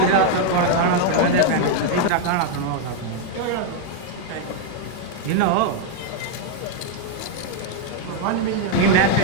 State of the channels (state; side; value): different; both; correlation 0.01